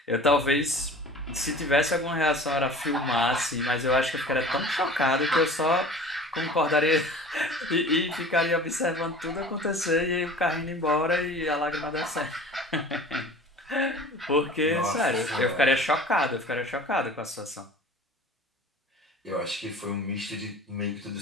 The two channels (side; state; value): both; normal; correlation 0.42